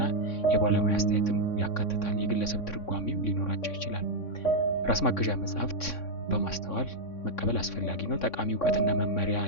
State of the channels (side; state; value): right; late; 3.6 ms